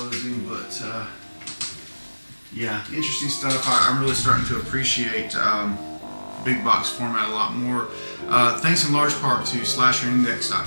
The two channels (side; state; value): both; inverted; correlation -1.00